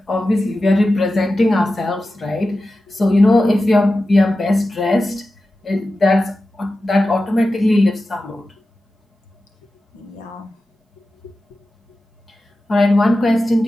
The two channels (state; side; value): normal; both; correlation 0.93